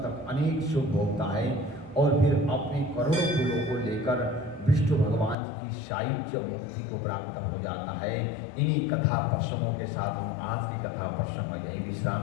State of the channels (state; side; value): drops out; right; at 5.4 s